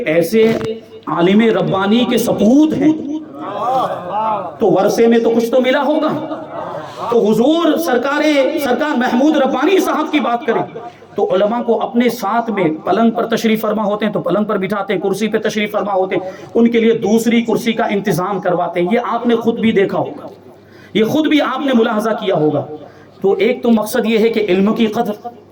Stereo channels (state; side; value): identical; both; correlation 1.00